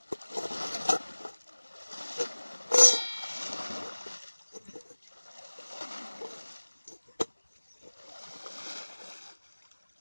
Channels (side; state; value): both; inverted; correlation -1.00